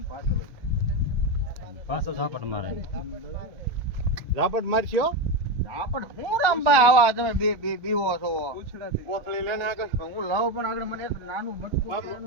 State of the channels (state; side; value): late; left; 1.3 ms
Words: પાછો ઝાપટ મારે. ઝાપટ મારશો આપણ હું રામભાઈ આવા તમે બે બે બીવો છો કોથળી લઈને આગળ હું લાવ પણ આગળ મને એક નાનું બટકું